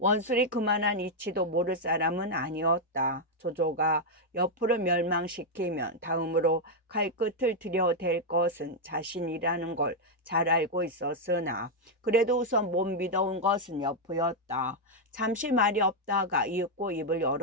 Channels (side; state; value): both; normal; correlation 0.00